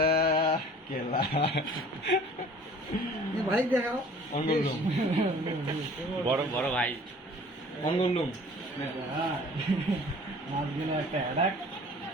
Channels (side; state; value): both; normal; correlation 0.49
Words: केला ये भाई देखाओ অঙ্গলুম বড় বড় ভাই অঙ্গলুম